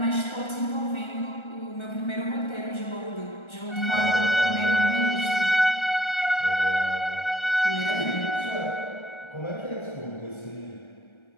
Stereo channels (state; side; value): late; right; 1.3 ms